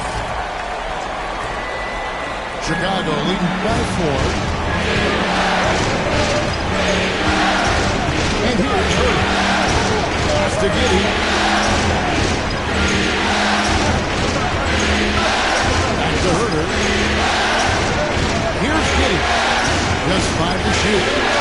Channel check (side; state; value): both; identical; correlation 1.00